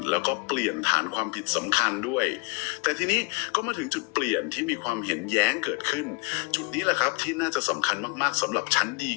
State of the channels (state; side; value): quieter; right; 31.0 dB